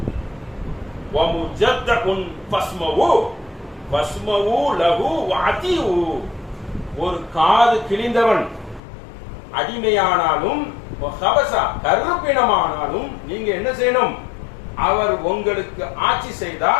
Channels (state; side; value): drops out; right; at 8.8 s